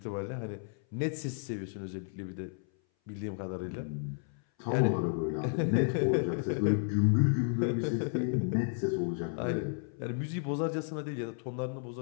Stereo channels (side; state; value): right; silent; 56 dB below the other